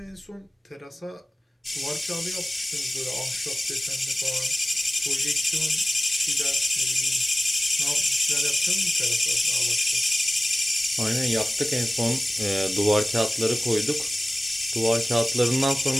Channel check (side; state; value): both; normal; correlation 0.96